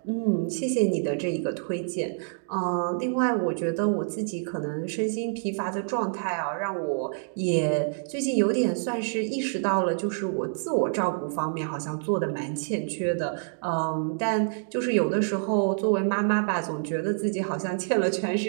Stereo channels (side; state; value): left; silent; digital silence